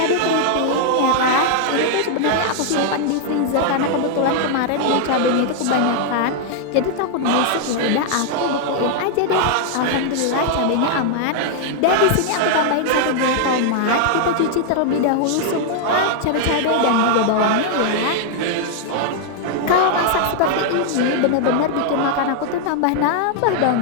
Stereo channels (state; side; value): different; both; correlation 0.00